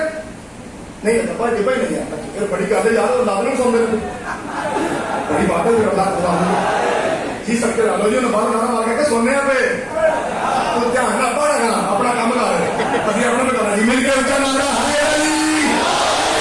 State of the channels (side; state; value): both; identical; correlation 1.00